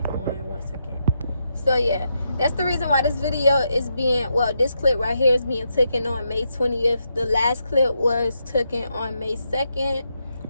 on 1 second. So yeah, that's the reason why this video is being, well, this clip right here is being taken on May 20th. The last clip was taken on May 2nd.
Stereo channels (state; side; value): inverted; both; correlation -0.82